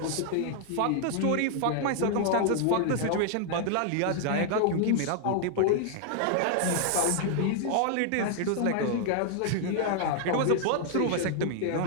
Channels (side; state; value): both; different; correlation 0.00